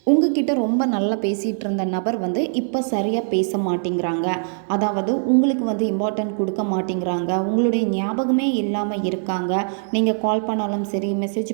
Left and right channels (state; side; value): silent; left; digital silence